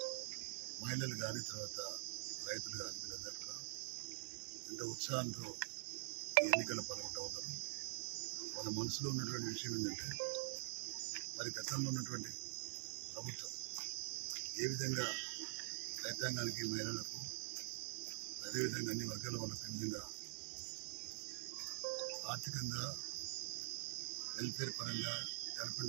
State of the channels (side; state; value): left; silent; digital silence